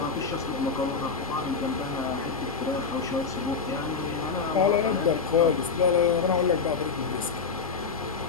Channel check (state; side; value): quieter; right; 5.2 dB